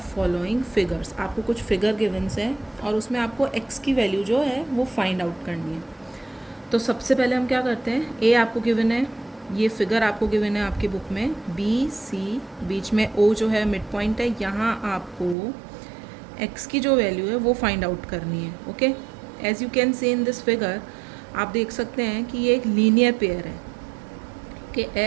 following figures. आपको कुछ figure गिवन्स है और उसमें आपको x की वैल्यू जो है वो फाइंड आउट करनी है. तो सबसे पहले हम क्या करते हैं, a आपको गिवन है, ये फिगर आपको गिवन है आपकी बुक में, b c बीच में o जो है मिड पॉइंट है, यहाँ आपको x की जो वैल्यू है वो फाइंड आउट करनी है. Okay, as you can see in this figure आप देख सकते हैं कि ये एक लीनियर पेयर है कि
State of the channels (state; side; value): drops out; left; at 15.4 s